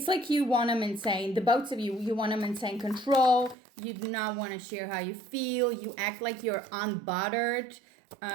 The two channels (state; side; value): drops out; left; at 3.6 s